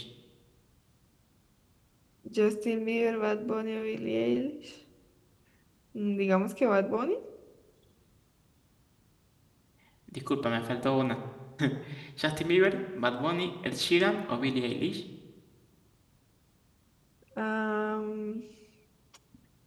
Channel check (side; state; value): both; identical; correlation 1.00